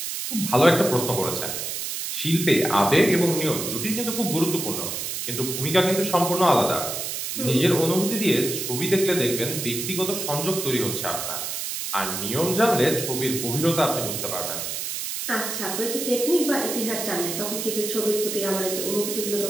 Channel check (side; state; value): right; noise; hiss, 4 dB below the sound